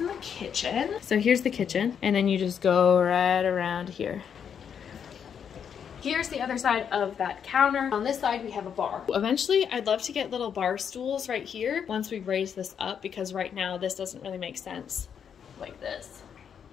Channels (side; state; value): right; quieter; 7.7 dB